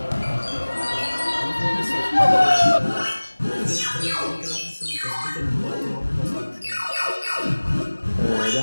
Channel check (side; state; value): both; inverted; correlation -1.00